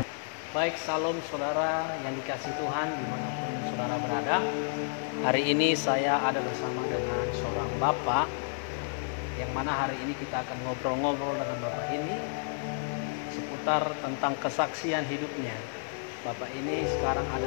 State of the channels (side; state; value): right; silent; digital silence